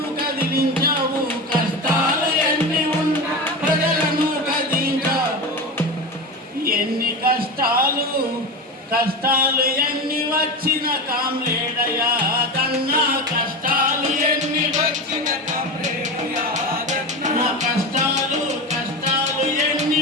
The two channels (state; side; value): normal; both; correlation 0.24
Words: కదిలించావు కష్టాలు ఎన్ని ఉన్నా ప్రజలను కదిలించావు ఎన్ని కష్టాలు ఎన్ని వచ్చిన కామ్రేడ యాదన్న కష్టాలు ఎన్ని వచ్చిన కామ్రేడ యాదన్న కష్టాలు ఎన్ని